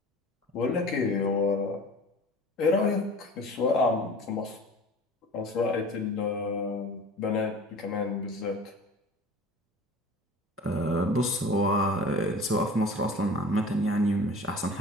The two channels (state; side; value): normal; both; correlation 0.40